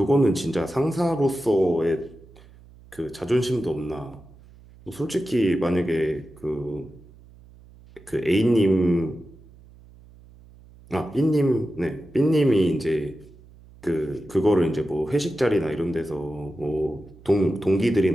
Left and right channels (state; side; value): noise; right; hum, 23 dB below the sound